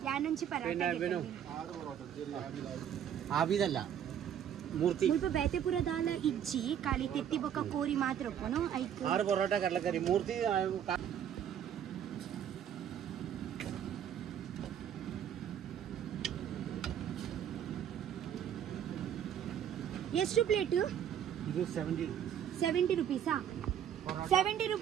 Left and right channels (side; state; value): left; quieter; 9.4 dB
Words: ಯಾನುಂಚಿ ಪರಾಟ ಆಬಿದಲ್ಲ ಮೂರ್ತಿ ಮುಲ್ಪ ಬೇತೆಪುರ ದಾಲ ಇಜ್ಜಿ ಖಾಲಿ ತೆತ್ತಿ ಬೊಕ್ಕ ಕೋರಿ ಮಾತ್ರ ಒಪ್ಪನು ಐಕ್ 6 ಪರೋಟ ಕಡಲೆಕರಿ ಮೂರ್ತಿ ಎಷ್ಟು ಪ್ಲೇಟ್ ಇದು 70 ರೂಪೀಸಾ 70